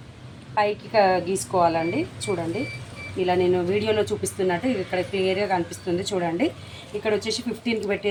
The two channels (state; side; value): identical; both; correlation 1.00